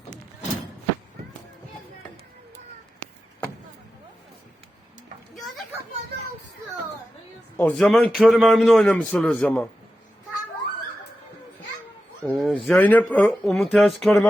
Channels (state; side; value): normal; both; correlation 0.92